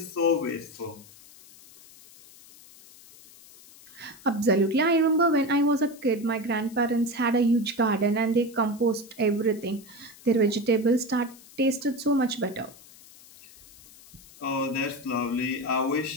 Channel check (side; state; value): left; noise; hiss, 22 dB below the sound